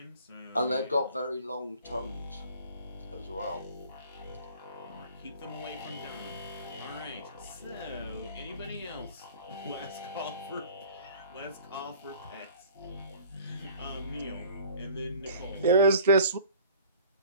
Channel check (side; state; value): both; inverted; correlation -0.49